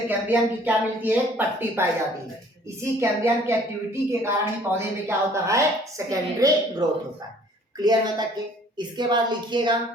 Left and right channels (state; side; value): normal; both; correlation 0.55